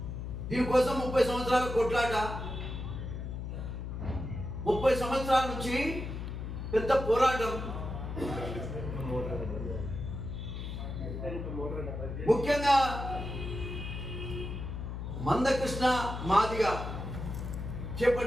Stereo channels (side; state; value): left; noise; hum, 6 dB below the sound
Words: దీనికోసం 30 సంవత్సరాల కొట్లాట, 30 సంవత్సరాల నుంచి పెద్ద పోరాటం. ముఖ్యంగా మందకృష్ణ మాదిగ